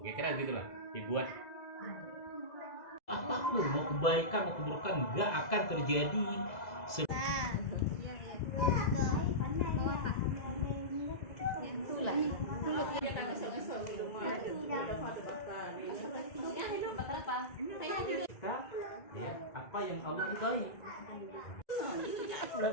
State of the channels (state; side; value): late; right; 2.0 ms